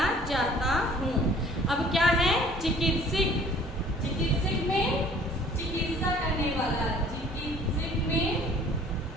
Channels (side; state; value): both; normal; correlation 0.53